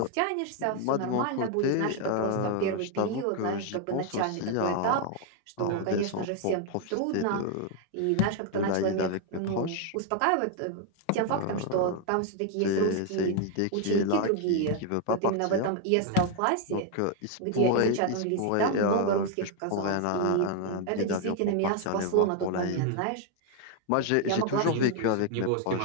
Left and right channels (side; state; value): both; different; correlation 0.01